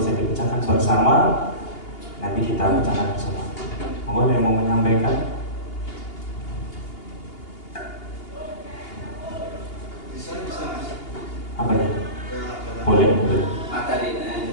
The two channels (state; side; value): late; right; 2.8 ms